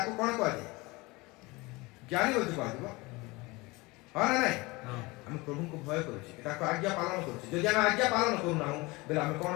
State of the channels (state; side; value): quieter; right; 23.6 dB